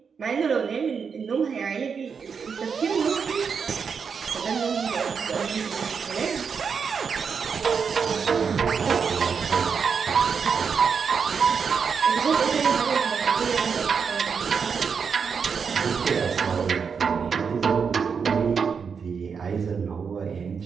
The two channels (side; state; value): left; quieter; 6.1 dB